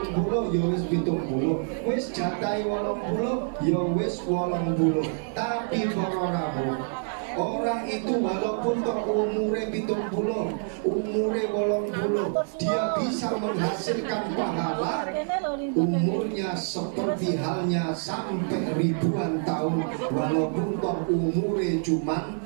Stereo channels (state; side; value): silent; left; 60 dB below the other